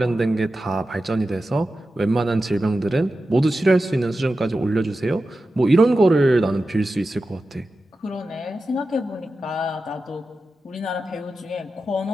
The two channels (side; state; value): both; normal; correlation 0.92